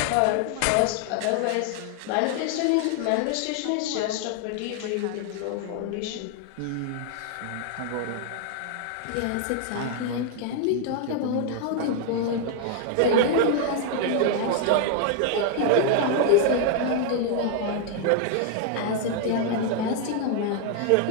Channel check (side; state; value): both; different; correlation 0.00